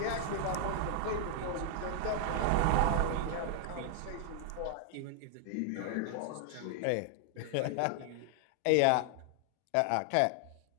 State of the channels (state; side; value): different; both; correlation 0.00